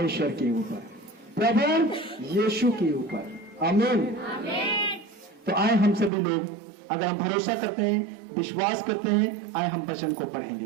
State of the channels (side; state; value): left; drops out; at 6.1 s